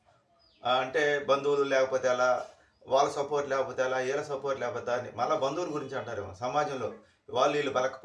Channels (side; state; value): both; identical; correlation 1.00